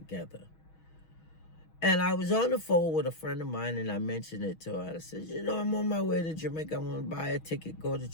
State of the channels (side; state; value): right; late; 6.3 ms